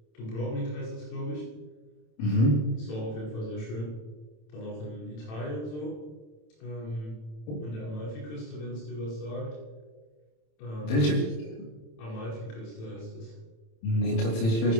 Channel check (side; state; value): right; late; 27 ms